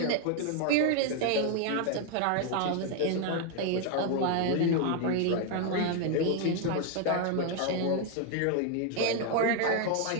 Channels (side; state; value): both; different; correlation 0.01